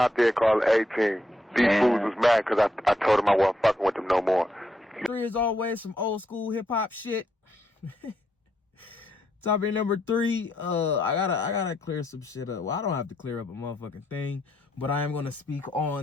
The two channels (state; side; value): normal; both; correlation 0.78